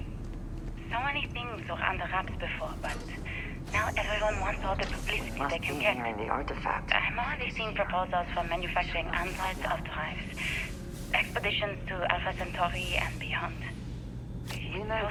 So many things were under wraps before, but now everyone wants all the publicity Must they be can here get. in the artifact. I'm already seeing proposals for manufacturing androids of drives, expeditions to Alpha Centauri and beyond. We know it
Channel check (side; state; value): both; identical; correlation 1.00